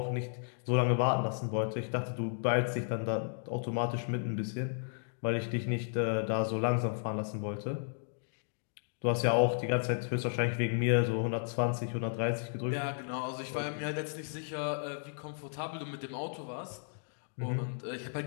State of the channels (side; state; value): right; silent; digital silence